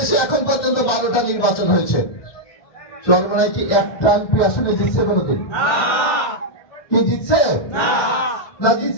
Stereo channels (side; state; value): right; late; 1.3 ms